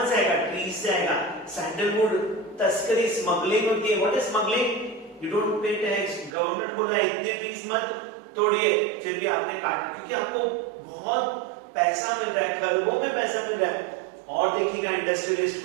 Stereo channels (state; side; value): drops out; left; at 6.4 s